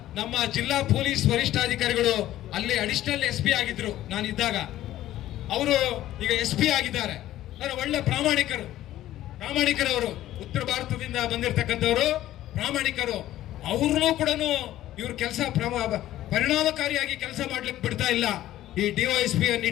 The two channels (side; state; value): right; quieter; 13.9 dB